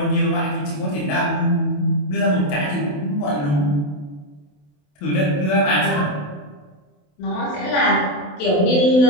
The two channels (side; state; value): right; late; 27 ms